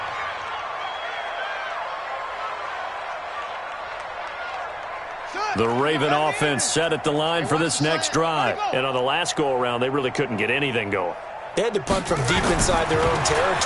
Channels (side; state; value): both; identical; correlation 1.00